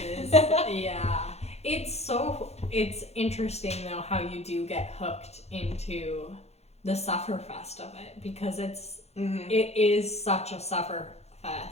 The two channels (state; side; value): late; right; 0.31 ms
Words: Yeah. It's interesting, though, how you do get hooked into the Sufferfest of it, because it is such a